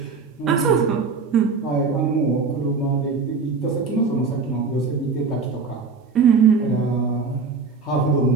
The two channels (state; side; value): quieter; left; 4.7 dB